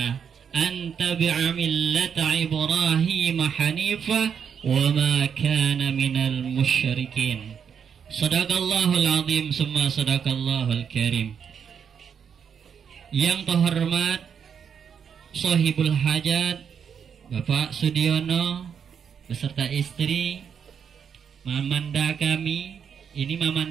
an tabi'a millata Ibrahim hanifa wa ma kana minal musyrikin. Sadaqallahul azim summa sadaqallahul karim. Yang terhormat Sohibul Hajat Bapak Sudiono beserta istri, mamanda kami, ini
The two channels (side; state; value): left; quieter; 7.4 dB